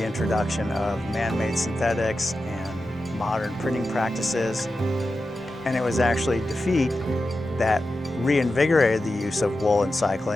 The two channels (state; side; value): normal; both; correlation 0.91